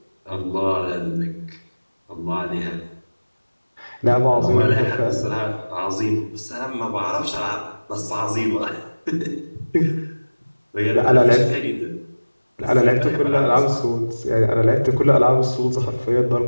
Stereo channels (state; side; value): inverted; both; correlation -1.00